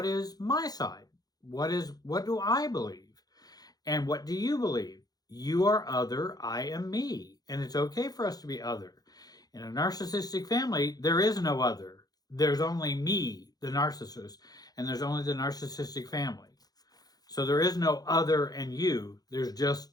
is my side? What do I believe? And what do you believe? You are other, I am me. And it's okay for us to be other. In a narcissistic family, there is no other. There's only me, the narcissist, and there's only the narcissistic family. So there is no other and you. There's just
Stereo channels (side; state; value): right; late; 0.19 ms